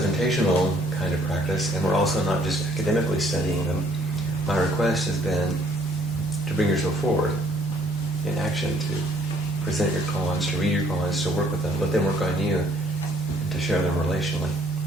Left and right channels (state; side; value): normal; both; correlation 0.63